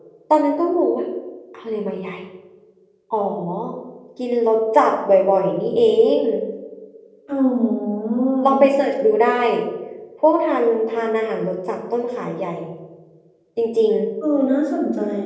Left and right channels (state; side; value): identical; both; correlation 1.00